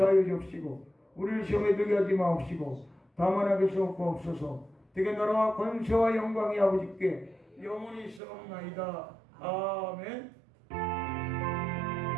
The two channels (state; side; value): drops out; left; at 8.2 s